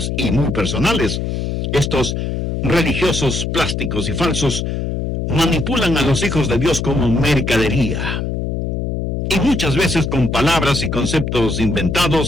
y muy personales, estos religiosos plásticos y falsos, manipulan a los hijos de Dios como mercadería. Y muchas veces con palabras y conceptos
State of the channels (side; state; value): left; noise; hum, 2 dB below the sound